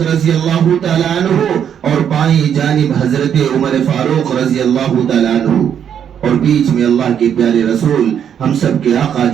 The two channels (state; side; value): quieter; left; 8.7 dB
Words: رضی اللہ تعالی عنہ اور بائیں جانب حضرت عمر فاروق رضی اللہ تعالی عنہ، اور بیچ میں اللہ کے پیارے رسول ہم سب کے آقا